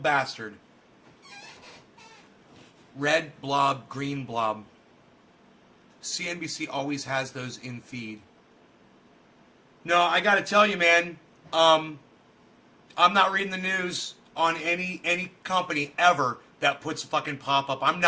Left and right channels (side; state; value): both; identical; correlation 1.00